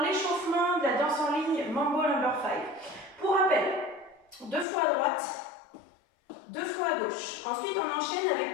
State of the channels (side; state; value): right; drops out; at 4.7 s